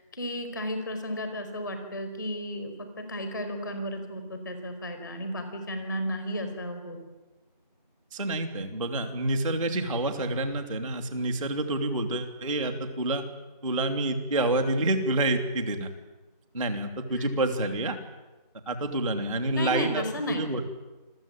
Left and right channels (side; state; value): both; inverted; correlation -0.42